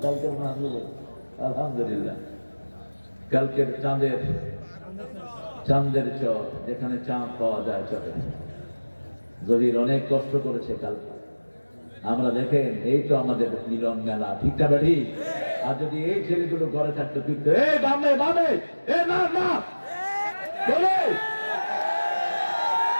কালকের মাহফিল আলহামদুলিল্লাহ, কালকের চাঁদের চর, যেখানে চাঁদ পাওয়া যায় চরে, জহির অনেক কষ্ট করেছে কালকে। আমরা দেখেন এই তো আমাদের মিলন মেলা, ঠিক না ঠিক? আর যদি এই ছেলেগুলো ঘরে থাকতো কিন্তু এই বামে বামে এ না না বলে,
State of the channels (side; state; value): both; inverted; correlation -1.00